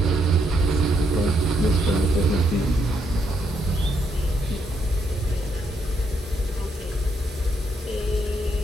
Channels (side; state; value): both; normal; correlation 0.76